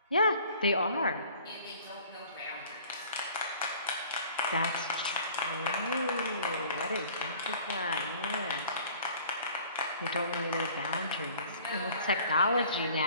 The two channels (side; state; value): both; inverted; correlation -0.51